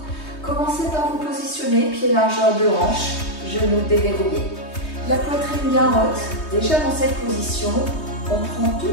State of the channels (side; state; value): right; late; 3.2 ms